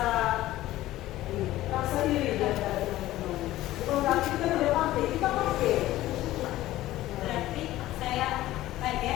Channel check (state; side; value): quieter; right; 15.6 dB